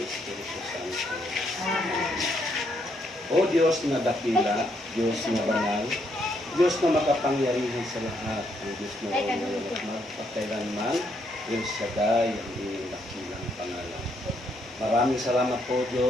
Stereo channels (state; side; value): normal; both; correlation 0.74